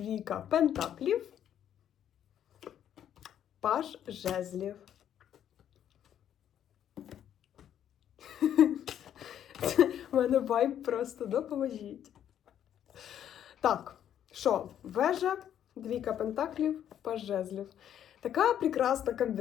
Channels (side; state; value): right; quieter; 10.1 dB